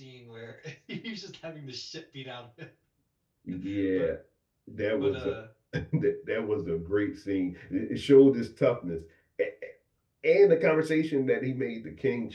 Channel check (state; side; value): identical; both; correlation 1.00